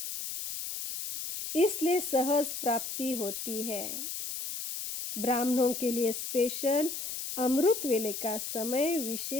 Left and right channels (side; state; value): left; noise; hiss, 5 dB below the sound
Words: इसलिए सहज प्राप्ति होती है। ब्राह्मणों के लिए स्पेशल अमृत वेले का समय